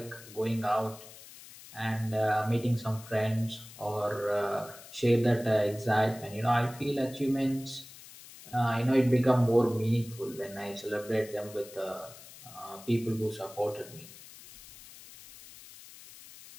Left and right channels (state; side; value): noise; left; hiss, 18 dB below the sound